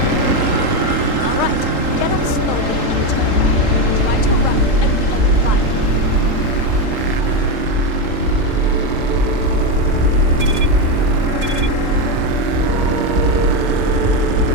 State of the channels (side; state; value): left; late; 3.8 ms